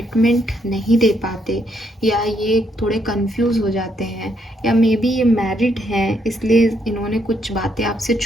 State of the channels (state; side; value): normal; both; correlation 0.74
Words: नहीं दे पाते, या ये थोड़े कंफ्यूज हो जाते हैं, या मे बी ये मैरिड हैं इसलिए इन्होंने कुछ बातें आपसे